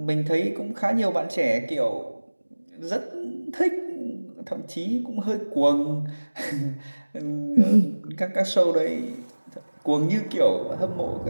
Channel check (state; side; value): inverted; both; correlation -1.00